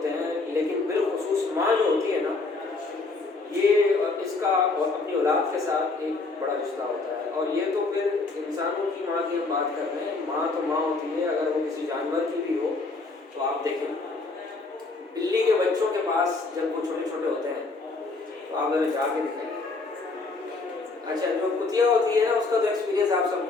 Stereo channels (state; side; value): quieter; right; 3.7 dB